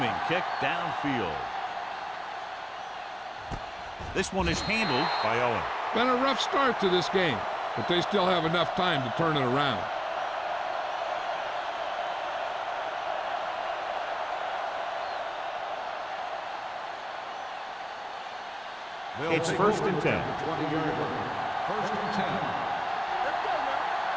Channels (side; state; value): both; identical; correlation 1.00